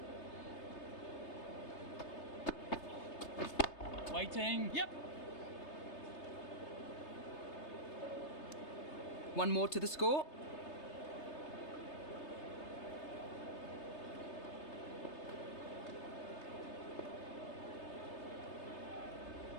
Waiting. Yep. One more to the score.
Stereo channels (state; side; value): late; right; 3.3 ms